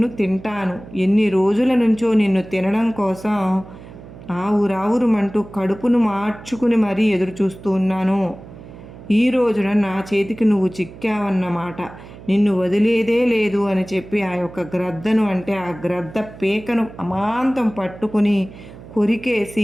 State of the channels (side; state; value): right; noise; hum, 17 dB below the sound